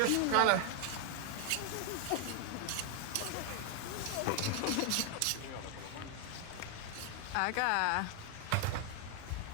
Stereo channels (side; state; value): both; different; correlation 0.00